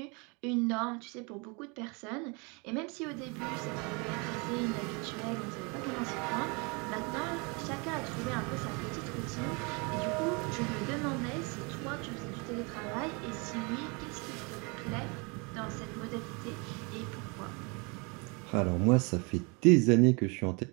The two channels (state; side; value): quieter; left; 30.7 dB